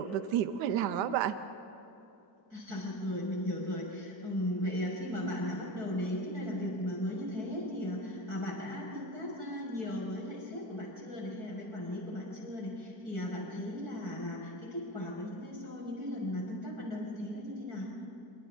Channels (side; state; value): left; late; 4.6 ms